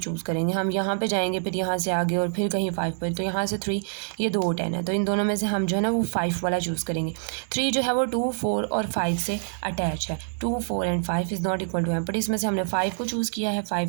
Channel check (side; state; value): left; silent; 61 dB below the other